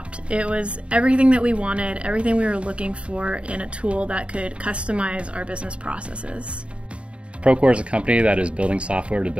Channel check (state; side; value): late; left; 0.060 ms